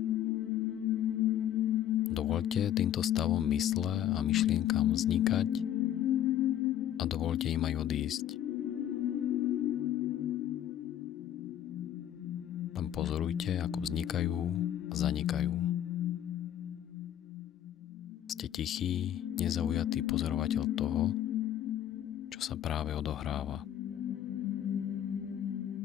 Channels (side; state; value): right; quieter; 11.2 dB